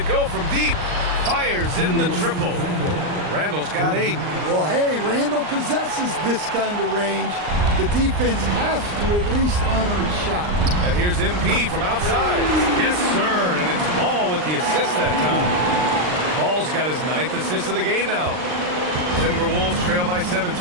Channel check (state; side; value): late; left; 39 ms